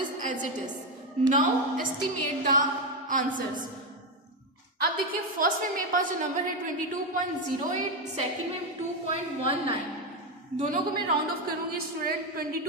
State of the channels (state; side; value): normal; both; correlation 0.09